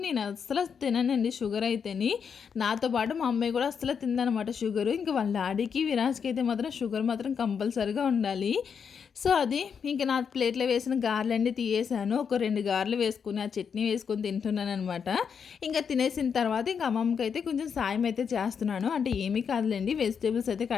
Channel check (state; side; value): quieter; right; 6.7 dB